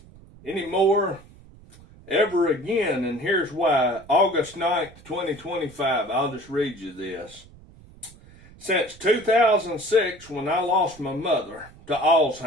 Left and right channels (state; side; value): noise; right; rumble, 23 dB below the sound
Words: anymore ever again, and here's why. August 9th, 2025, I'll just read you this. Since 2006, when I lost my mother to